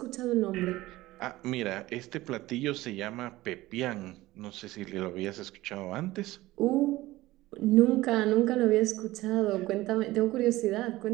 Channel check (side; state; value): left; quieter; 17.7 dB